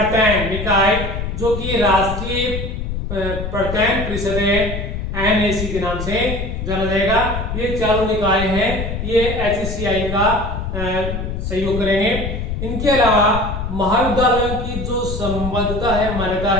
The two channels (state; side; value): noise; left; rumble, 4 dB below the sound